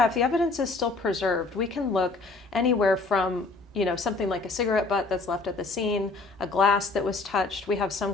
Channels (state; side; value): quieter; right; 3.6 dB